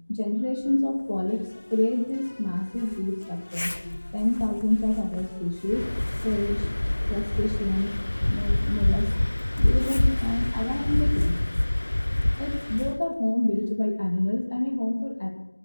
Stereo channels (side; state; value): both; inverted; correlation -1.00